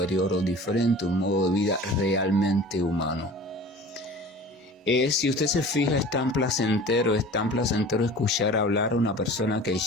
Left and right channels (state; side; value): normal; both; correlation 0.41